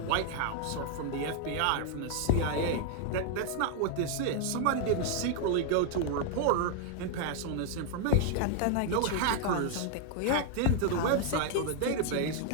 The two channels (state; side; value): different; both; correlation 0.00